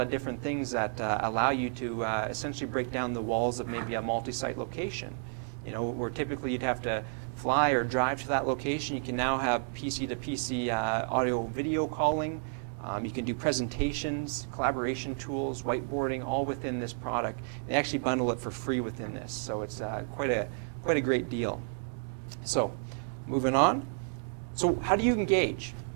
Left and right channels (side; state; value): left; silent; digital silence